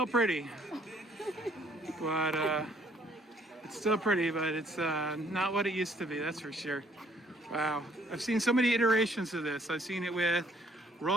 pretty, but it's not what it used to be. That's for sure. Wow, I've seen so many iterations of this. I've seen it with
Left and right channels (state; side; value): normal; both; correlation 0.64